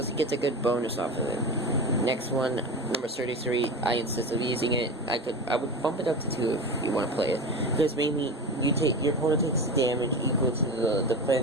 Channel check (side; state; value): both; normal; correlation 0.27